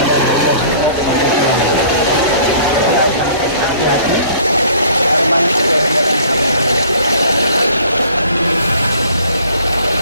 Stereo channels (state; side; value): inverted; both; correlation -0.52